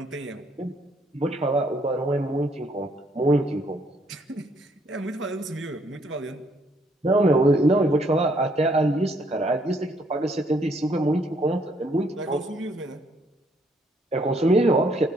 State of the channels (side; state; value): both; normal; correlation 0.68